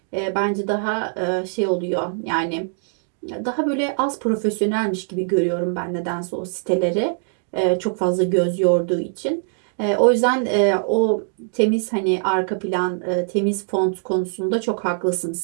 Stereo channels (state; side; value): silent; left; digital silence